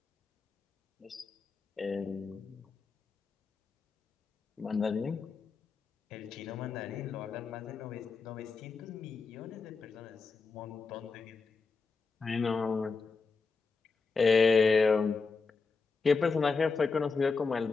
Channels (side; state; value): right; quieter; 4.6 dB